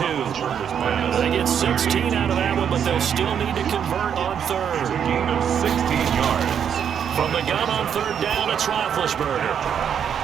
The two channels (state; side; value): quieter; left; 8.2 dB